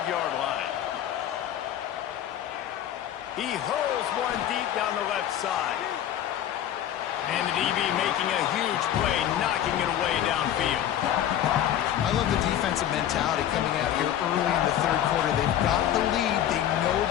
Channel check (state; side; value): quieter; right; 11.0 dB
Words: line. He hurls one deep down the left side. And the DB making a huge play, knocking it away downfield. I love the defensive mentality coming out here early in the 3rd quarter. They've got the lead. They know